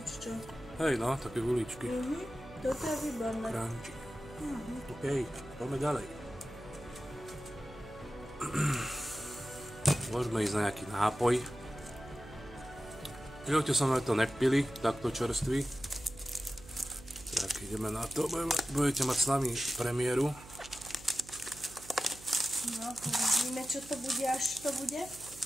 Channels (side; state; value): right; noise; hum, 18 dB below the sound